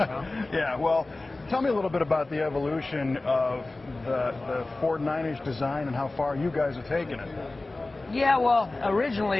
Yeah, well, tell me a little bit about the evolution of the Ford 9-inch design and how far you guys have taken it. Yeah, well,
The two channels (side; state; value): right; quieter; 3.1 dB